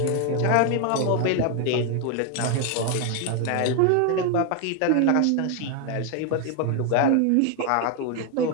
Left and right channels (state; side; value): different; both; correlation 0.01